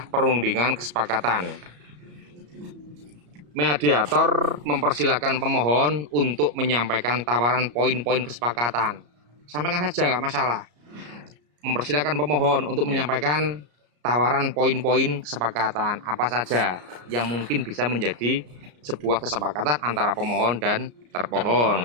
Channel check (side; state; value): left; late; 34 ms